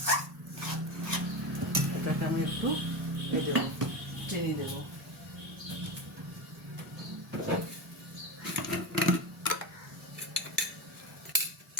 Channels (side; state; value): both; normal; correlation 0.20